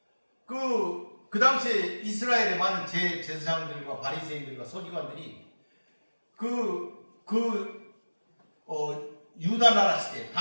그 당시에 이스라엘의 많은 제사장들과 바리새인들과 서기관들이 유다 나라 시대,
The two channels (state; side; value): inverted; both; correlation -1.00